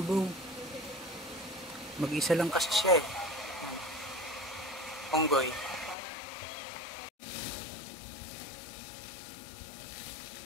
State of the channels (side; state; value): right; drops out; at 6.0 s